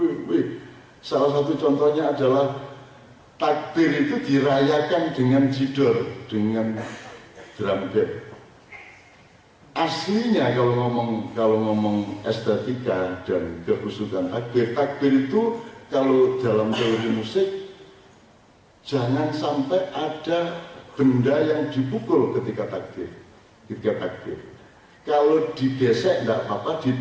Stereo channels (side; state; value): both; identical; correlation 1.00